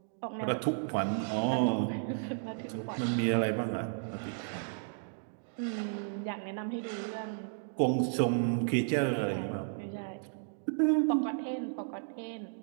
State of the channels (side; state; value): left; silent; digital silence